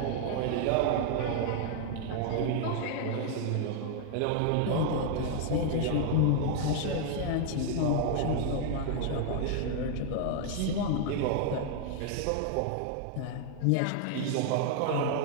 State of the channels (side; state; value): both; different; correlation 0.00